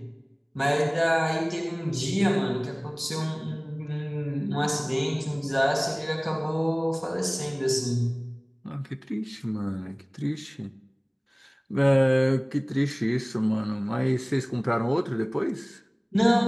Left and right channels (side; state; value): both; identical; correlation 1.00